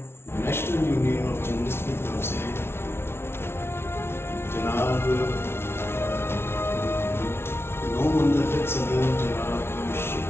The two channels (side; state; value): right; late; 0.12 ms